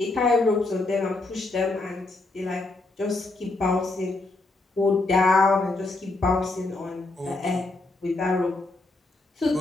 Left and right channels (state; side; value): quieter; right; 3.1 dB